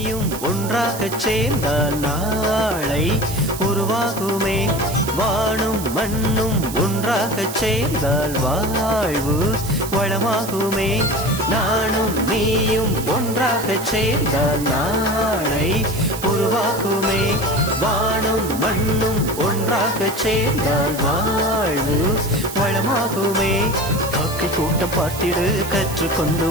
ஒன்றாகச் சேர்ந்தால் நாளை உருவாகுமே. வானும் மண்ணும் ஒன்றாகச் சேர்ந்தால் வாழ்வு வளமாகுமே. நானும் நீயும் ஒன்றாகச் சேர்ந்தால் நாளை உருவாகுமே. வானும் மண்ணும் ஒன்றாகச் சேர்ந்தால் வாழ்வு வளமாகுமே. காக்கை கூட்டம் பார்த்திடு, கற்றுக்கொண்டு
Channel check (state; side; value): noise; right; hiss, 11 dB below the sound